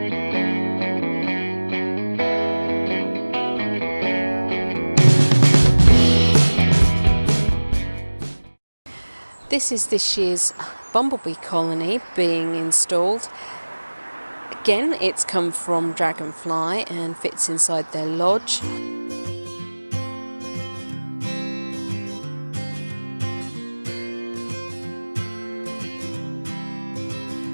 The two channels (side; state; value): both; inverted; correlation -1.00